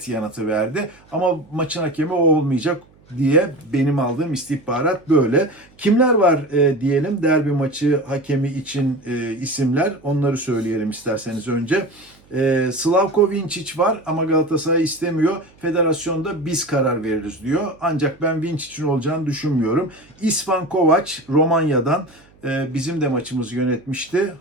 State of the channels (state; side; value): noise; right; hum, 29 dB below the sound